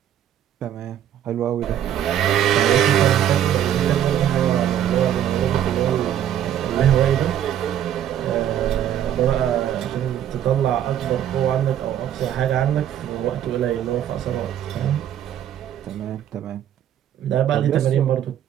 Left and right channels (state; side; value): quieter; left; 10.6 dB